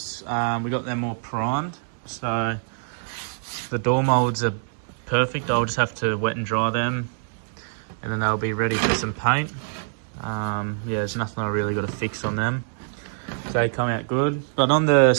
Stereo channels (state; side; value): silent; left; digital silence